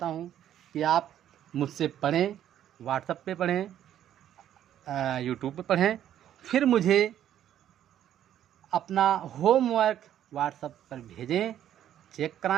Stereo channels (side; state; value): left; quieter; 11.0 dB